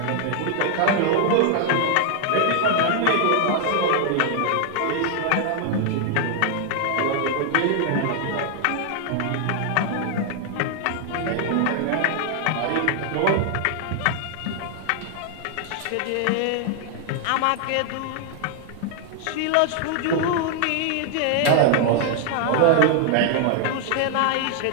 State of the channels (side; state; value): both; different; correlation 0.00